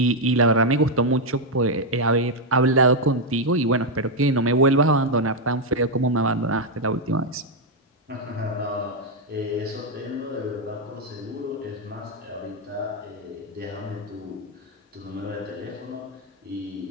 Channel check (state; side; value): normal; both; correlation 0.01